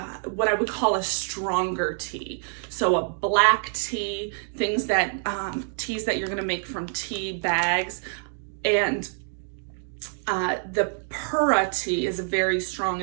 what I would call a stronger tea. So a black tea, things that teas that you're going to make from tea bags. And the Pura tea is a very strong,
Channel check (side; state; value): left; silent; 60 dB below the other